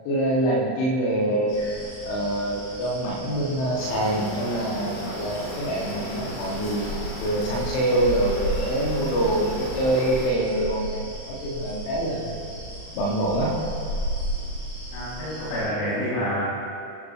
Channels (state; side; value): late; right; 39 ms